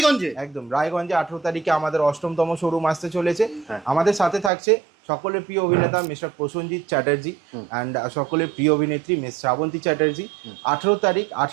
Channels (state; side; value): drops out; left; at 4.5 s